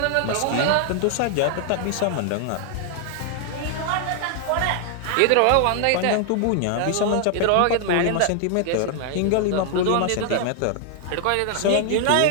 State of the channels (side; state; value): both; different; correlation 0.00